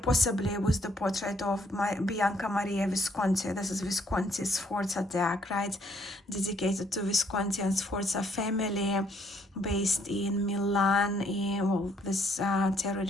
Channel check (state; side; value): normal; both; correlation 0.67